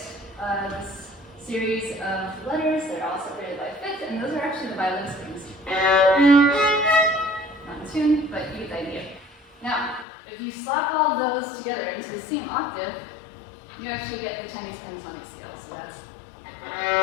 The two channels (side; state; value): right; drops out; at 10.1 s